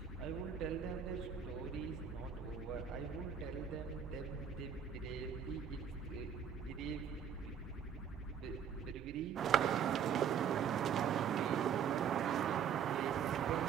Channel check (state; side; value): quieter; left; 7.9 dB